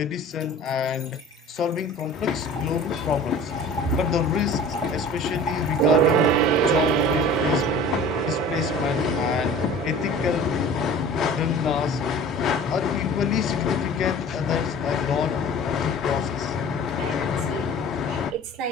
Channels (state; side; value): normal; both; correlation 0.42